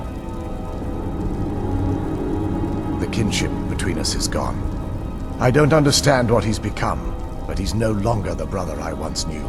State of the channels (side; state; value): both; identical; correlation 1.00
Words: The kinship between us is gone. I don't understand what he's become, but he's no longer the brother I once knew.